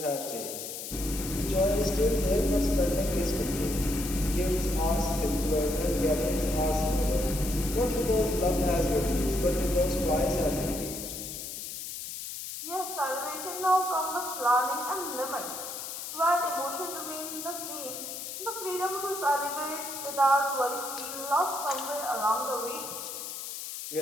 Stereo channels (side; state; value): left; noise; hiss, 7 dB below the sound